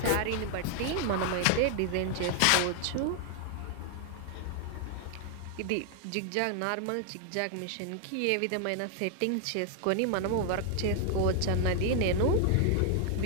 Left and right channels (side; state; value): both; different; correlation 0.00